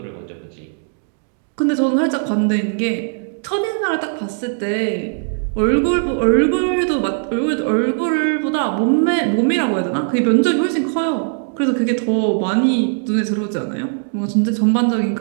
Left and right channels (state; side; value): silent; left; digital silence